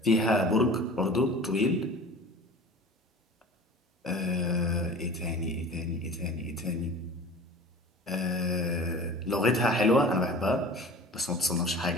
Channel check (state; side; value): normal; both; correlation 0.40